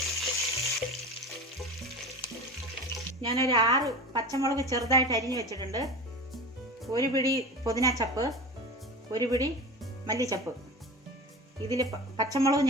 ഞാനൊരു 6 പച്ചമുളക് ചെറുതായിട്ട് അരിഞ്ഞ് വെച്ചിട്ടുണ്ട്. 1 പിടി പുതിന ചപ്പ്, 1 പിടി മല്ലിച്ചപ്പ്. ഇതിൽ പച്ചമുളക്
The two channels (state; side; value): normal; both; correlation 0.31